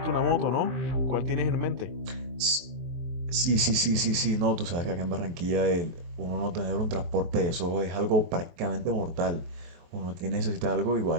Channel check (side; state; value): left; late; 23 ms